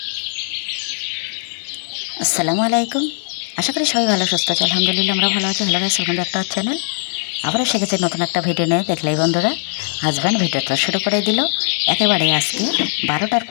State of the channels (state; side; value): silent; right; digital silence